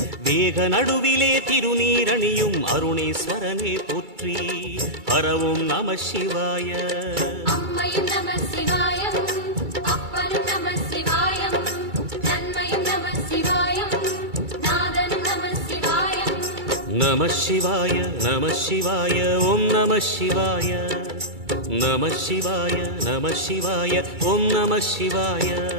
வேக நடுவிலே திருநீரணியும் அருணேஸ்வரனே போற்றி. ஹரவும் நம சிவாய. அம்மையும் நம சிவாயம், அப்பனும் நம சிவாயம், நன்மையும் நம சிவாயம், நாதனும் நம சிவாயம். நம சிவாய நம சிவாய ஓம் நம சிவாய. நம சிவாய நம சிவாய ஓம் நம சிவாய.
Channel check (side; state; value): left; late; 2.3 ms